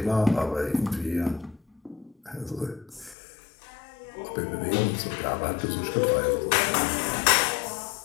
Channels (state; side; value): drops out; right; at 3.2 s